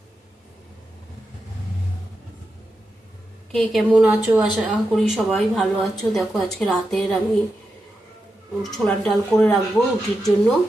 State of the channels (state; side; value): normal; both; correlation 0.88